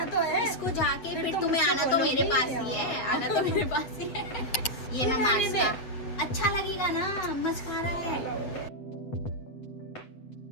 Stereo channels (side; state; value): right; late; 8.0 ms